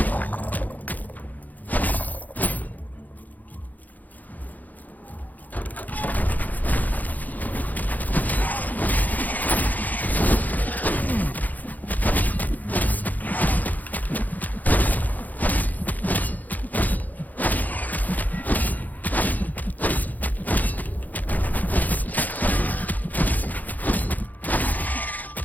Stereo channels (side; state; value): right; late; 0.081 ms